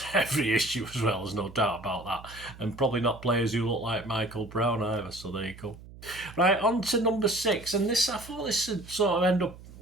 every issue as well. There's no doubt about that. And probably not players who look like Michael Brown either. So there you go. Right, on to number 6. And this, I thought this would sort of end up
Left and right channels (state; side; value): noise; right; hum, 18 dB below the sound